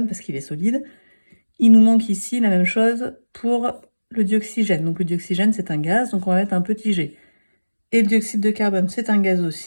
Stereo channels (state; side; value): inverted; both; correlation -1.00